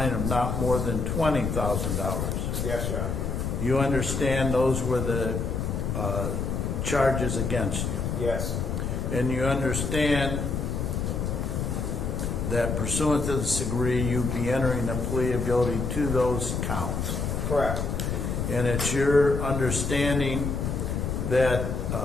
of not more than $20,000. Yes, Your Honor. You understand those were the charges against you? Yes. And you understand that pursuant to this degree, you'd be entering a plea of guilty to those counts. Correct. And it's your understanding that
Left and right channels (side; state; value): left; noise; rumble, 1 dB below the sound